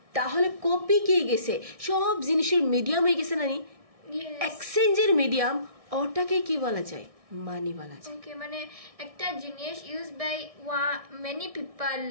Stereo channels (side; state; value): left; late; 1.6 ms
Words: তাহলে কপি কি গেছে সব জিনিসের মিডিয়াম হয়ে গেছে নানি এক্সচেঞ্জের মিডিয়াম ওটাকে কি বলা যায় মানি বলা যায় ওকে মানে একটা জিনিস use by many people